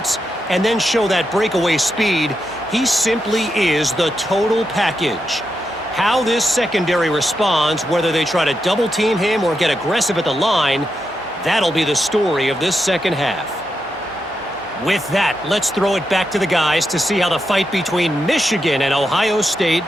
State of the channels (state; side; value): normal; both; correlation 0.85